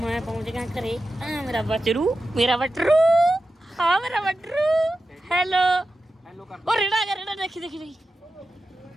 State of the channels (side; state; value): both; normal; correlation 0.92